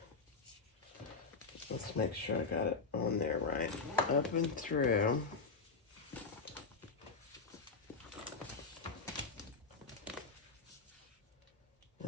Let's make sure I got it on there right. Up and through.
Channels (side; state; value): right; quieter; 4.6 dB